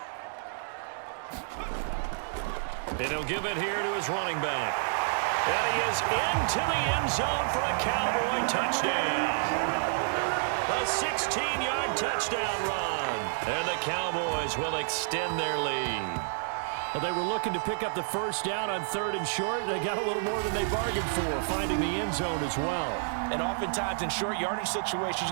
And he'll give it here to his running back. And he is into the end zone for a Cowboy touchdown. A 16-yard touchdown run. And the Cowboys will extend their lead. Well, they were looking to pick up the first down on 3rd and short. They got a little more than they bargained for, finding the end zone as well. And oftentimes in short yardage situations,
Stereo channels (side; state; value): left; silent; digital silence